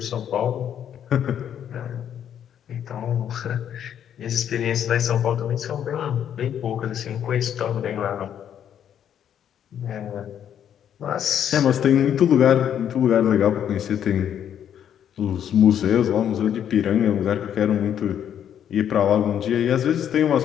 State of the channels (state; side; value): quieter; right; 9.5 dB